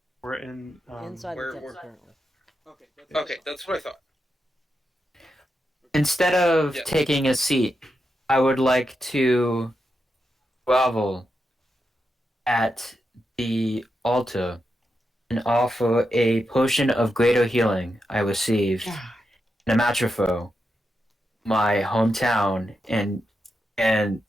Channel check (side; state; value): both; normal; correlation 0.86